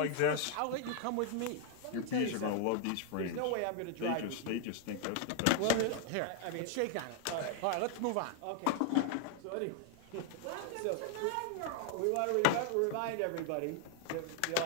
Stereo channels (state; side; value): different; both; correlation 0.00